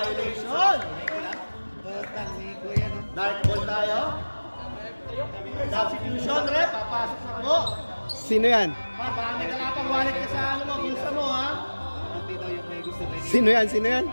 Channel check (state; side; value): inverted; both; correlation -1.00